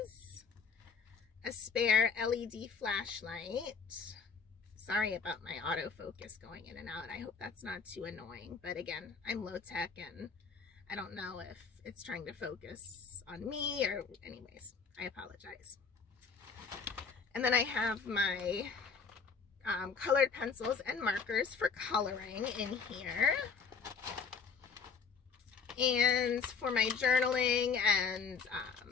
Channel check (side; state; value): right; quieter; 5.6 dB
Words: a spare LED flashlight. Sorry about my autofocus going in and out. I hope that's not too annoying. But again, I'm low tech and I don't know if it's trying to focus on me or anyways, I apologize. And then I have my colored pencils and markers for coloring in here. And for my journaling and